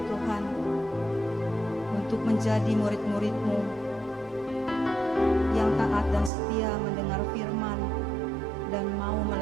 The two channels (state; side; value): drops out; left; at 6.3 s